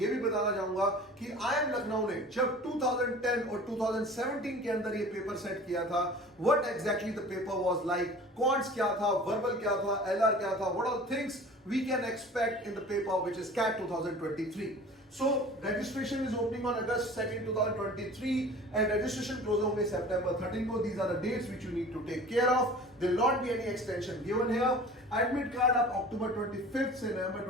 भी बताना चाहूंगा कि IIM लखनऊ ने जब 2010 और 2017 के अंदर ये पेपर सेट किया था, what exactly the paper was like, quants क्या था, वर्बल क्या था, LR क्या था, what all things we can expect in the paper which is CAT 2023. So registration is opening on August 2nd 2023 and registration close होंगे September 13 को. These are the dates which you need to take care of. There will not be any extension given here. Admit card आप October 25th से November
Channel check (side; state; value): both; normal; correlation 0.42